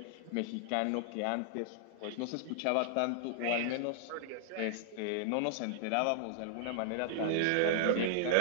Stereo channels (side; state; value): both; different; correlation -0.01